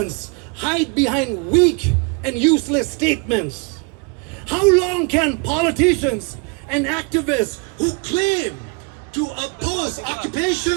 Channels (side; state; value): left; quieter; 33.4 dB